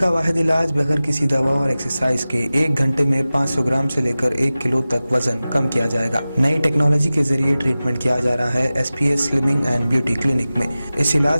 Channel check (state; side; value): inverted; both; correlation -0.96